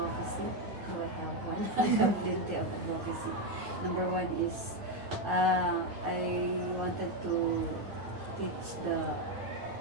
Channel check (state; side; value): late; left; 9.4 ms